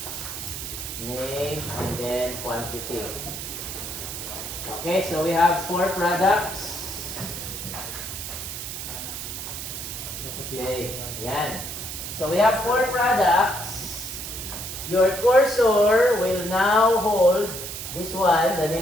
Name, and then quantity. Okay, so we have 4 products. Okay, yan. So we have 4 products. Your cursor will now hold this one. The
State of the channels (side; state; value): right; noise; hiss, 7 dB below the sound